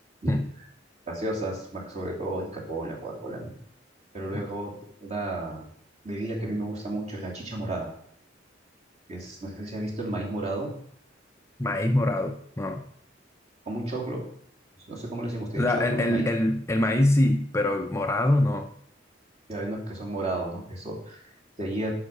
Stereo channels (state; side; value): normal; both; correlation 0.76